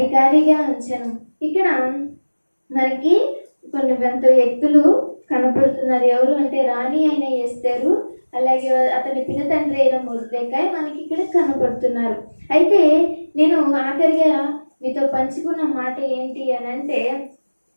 ఉంచెను. ఇక్కడ మనకి కొన్ని వ్యక్తులు కనపడుతున్నారు. ఎవరు అంటే రాణి అయిన ఎస్తేరు, అలాగే అతని పినతండ్రి అయిన మొర్దెకాయి మనకి ఇక్కడ కనపడుతున్నారు. అయితే నేను ఆఖరిగా మీతో పంచుకున్న మాట ఏంటి అని అంటే,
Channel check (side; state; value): both; inverted; correlation -1.00